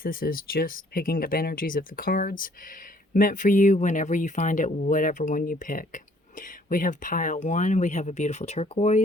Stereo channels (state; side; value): normal; both; correlation 0.61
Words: This is just picking up energies of the cards meant for you whenever you find it, whatever one you pick. We have pile 1, we have a beautiful